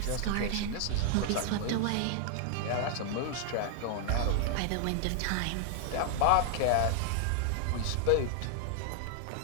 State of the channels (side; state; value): both; different; correlation 0.00